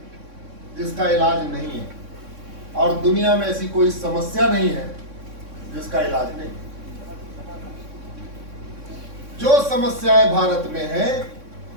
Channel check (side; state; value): left; late; 3.6 ms